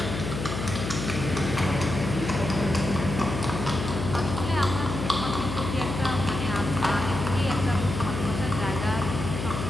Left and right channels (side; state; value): left; noise; hum, 5 dB below the sound